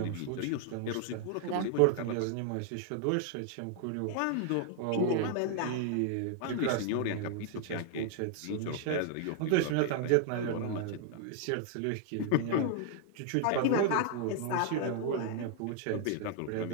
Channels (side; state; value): both; different; correlation 0.00